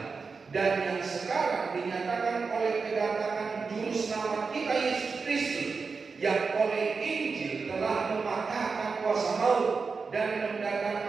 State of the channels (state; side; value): quieter; left; 4.8 dB